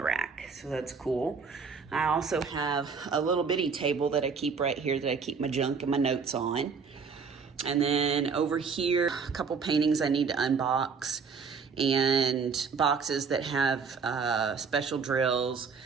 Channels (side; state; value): left; quieter; 5.5 dB